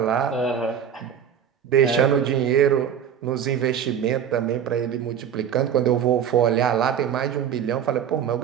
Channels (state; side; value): quieter; left; 8.6 dB